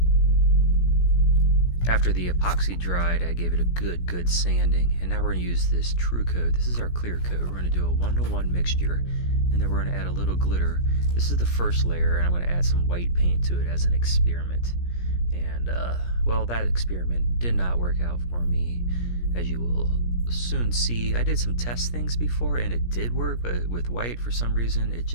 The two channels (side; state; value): right; late; 17 ms